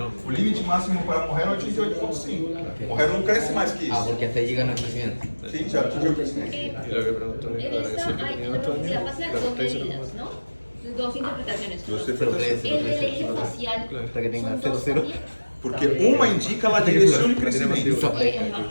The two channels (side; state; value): both; inverted; correlation -1.00